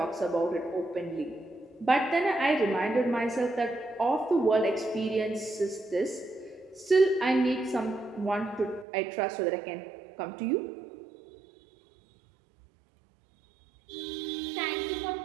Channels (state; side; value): drops out; left; at 8.8 s